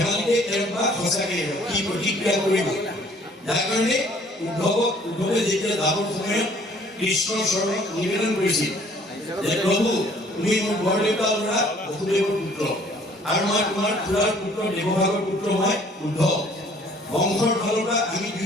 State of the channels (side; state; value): both; normal; correlation 0.57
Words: এৰক বা সঁচাকৈ এৰক, কি প্ৰতিক্ৰিয়া কৰিব? যাৰ কাৰণে উদ্ধৱে যেতিয়া যাবৰ সময়ত কৃষ্ণৰ চৰণত নিবেদন কৰিছিল যে প্ৰভু তুমি মোৰ বৰদেউতা ল'ৰা বসুদেৱৰ পুত্ৰ, আৰু মই তোমাৰ খুৰাৰ পুত্ৰ দেৱভাগৰ পুত্ৰ, মই উদ্ধৱ। বংশৰ ফালৰ পৰা আমি